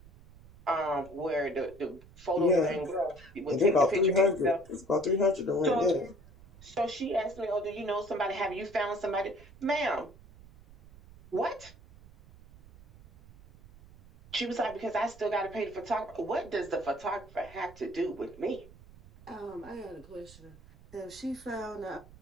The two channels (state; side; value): noise; right; rumble, 22 dB below the sound